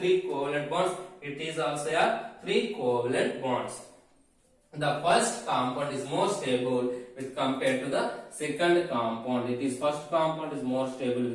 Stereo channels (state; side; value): identical; both; correlation 1.00